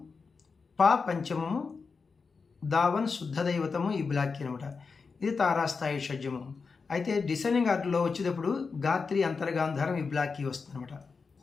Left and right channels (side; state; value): right; quieter; 4.9 dB